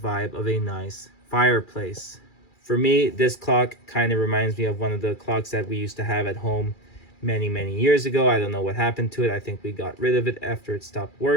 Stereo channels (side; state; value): right; late; 2.4 ms